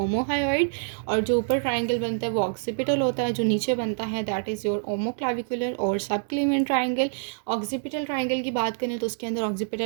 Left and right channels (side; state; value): left; silent; digital silence